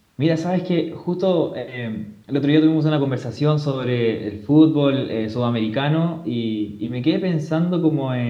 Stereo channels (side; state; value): both; identical; correlation 1.00